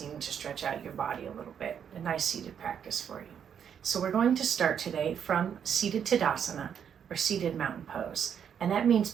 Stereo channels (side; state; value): left; quieter; 8.1 dB